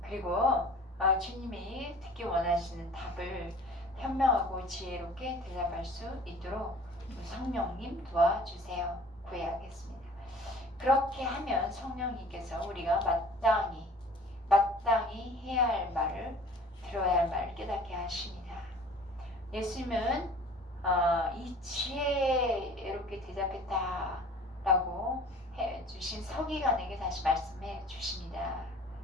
그리고 주님이 듣기 원하시는 답을 현명하고 지혜롭게 대답할 수 있도록 성령님 도와주세요. 구해야겠습니다. 그렇게 하면 성령님께서 우리가 마땅히 해야 할 말을 들어야 할 말을 깨닫게 하십니다. 예수님은 이 지혜롭게 대답했다라고 해주신 서기관에게 다시 말씀해 주십니다.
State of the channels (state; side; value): normal; both; correlation 0.47